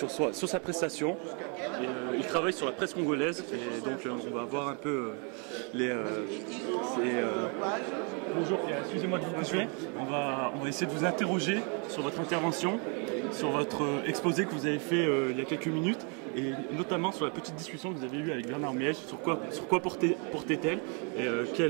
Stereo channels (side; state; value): left; quieter; 36.7 dB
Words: sa prestation. Il travaille sur la presse congolaise et donc on va voir un peu Bonjour, excusez-moi de vous couper. On va essayer de vous interroger sur votre intervention, sur votre exposé que vous avez fait il y a quelques minutes, et notamment sur la petite discussion que vous avez eue avec Bernard Miège, sur quoi portait-elle, et